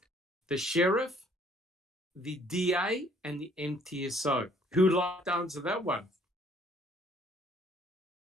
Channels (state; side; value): normal; both; correlation 0.61